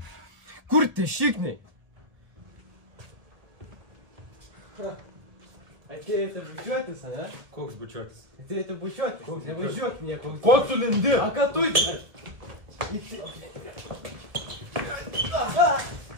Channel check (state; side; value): late; left; 1.5 ms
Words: Kur tie šikniai? Atėjote bučiuotis, ane? Koks bučiuotis? Atėjote bučiuotis. Nevažiuok nieko. Ko tu lindi? A ką tu čia?